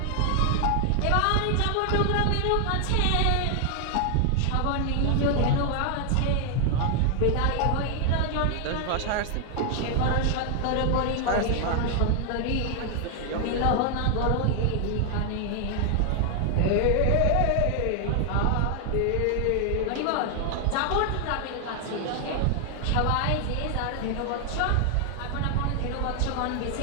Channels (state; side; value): different; both; correlation 0.00